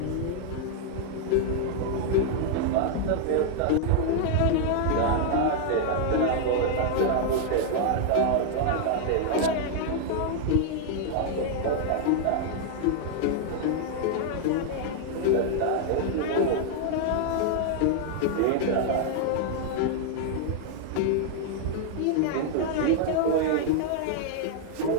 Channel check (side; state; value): both; different; correlation 0.00